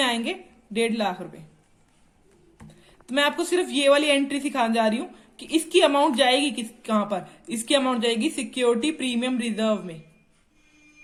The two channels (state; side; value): identical; both; correlation 1.00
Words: आएंगे 1.5 लाख रुपए। तो मैं आपको सिर्फ ये वाली एंट्री सिखाने जा रही हूं कि इसकी अमाउंट जाएगी कहां पर? इसकी अमाउंट जाएगी सिक्योरिटी प्रीमियम रिजर्व में,